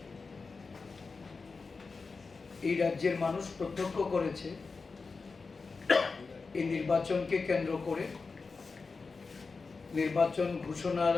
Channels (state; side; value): quieter; right; 4.4 dB